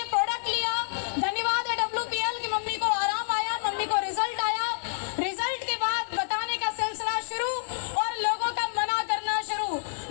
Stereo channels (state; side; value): silent; right; 59 dB below the other